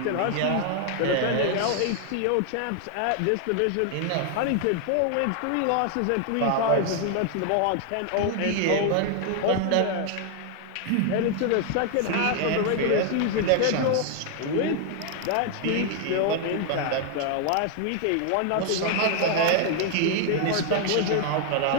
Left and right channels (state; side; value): different; both; correlation 0.00